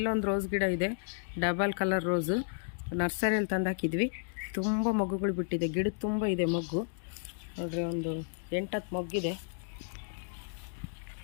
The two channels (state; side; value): silent; right; digital silence